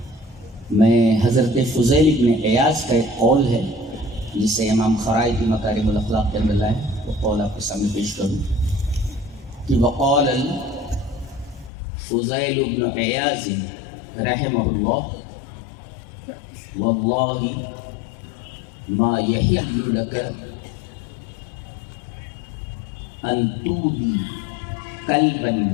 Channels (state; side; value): drops out; right; at 11.7 s